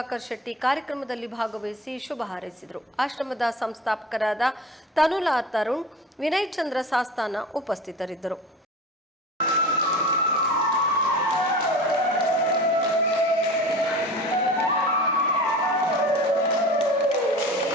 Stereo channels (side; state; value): both; normal; correlation 0.36